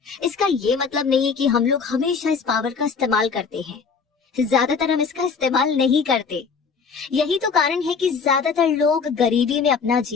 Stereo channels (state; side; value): quieter; right; 5.4 dB